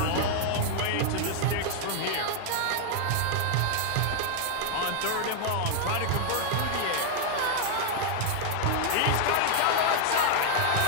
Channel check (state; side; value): different; both; correlation 0.00